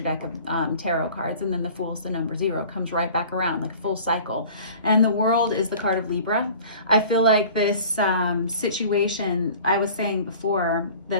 of tarot cards, and then the Fool is the number 0. Comes right back around, like a full cycle. And the World is the card of Libra. I feel like this situation, I was saying before,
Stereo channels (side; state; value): both; inverted; correlation -0.45